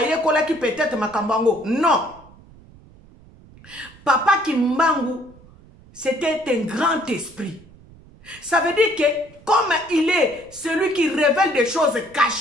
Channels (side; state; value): right; noise; rumble, 24 dB below the sound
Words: ki peut-être makambango. Non. Papa Kimbangu, c'était un grand esprit. Ça veut dire que comme il est celui qui révèle des choses